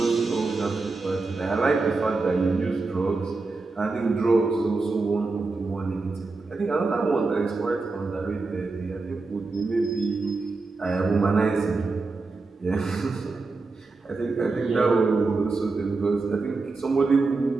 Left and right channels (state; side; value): quieter; left; 3.8 dB